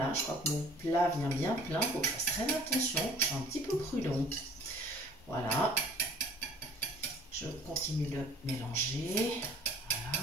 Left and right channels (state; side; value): normal; both; correlation 0.51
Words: je crois que mon plat vient bien plein. Il faut que je fasse très attention. Je suis un petit peu prudente. Voilà. Je continue de mélanger.